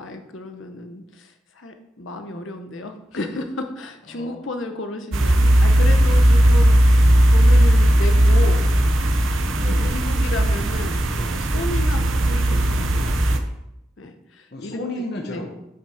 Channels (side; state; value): both; normal; correlation 0.92